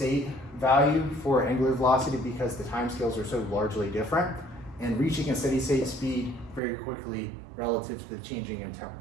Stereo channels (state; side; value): drops out; left; at 6.6 s